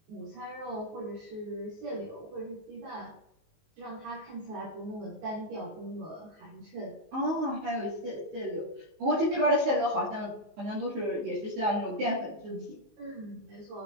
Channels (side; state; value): left; late; 19 ms